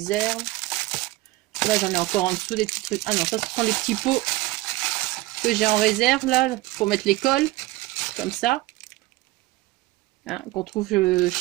Là, j'en ai encore en dessous des petits trucs. Ah non, ça, ce sont les petits pots que j'ai en réserve, là, pour mettre les cols. Comme ça. Hein, qu'on trouve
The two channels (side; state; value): left; quieter; 19.2 dB